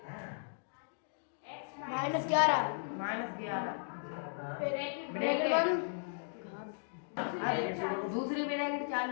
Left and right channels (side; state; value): right; silent; digital silence